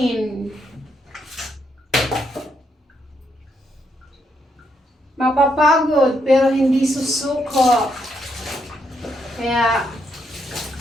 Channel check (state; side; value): normal; both; correlation 0.77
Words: Mapapagod pero hindi susuko. Kaya